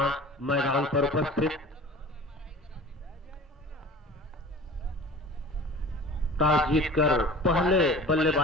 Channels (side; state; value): both; normal; correlation 0.41